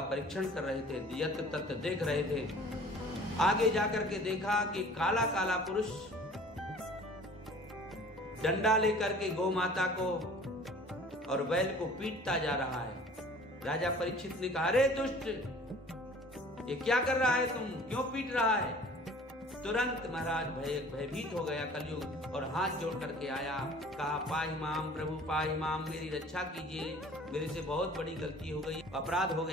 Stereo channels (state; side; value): normal; both; correlation 0.48